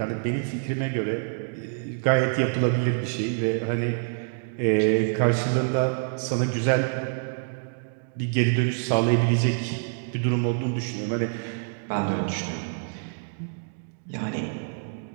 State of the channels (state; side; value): silent; left; digital silence